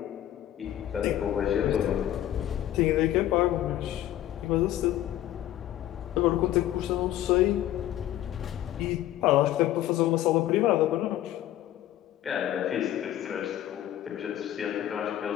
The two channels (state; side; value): quieter; right; 12.9 dB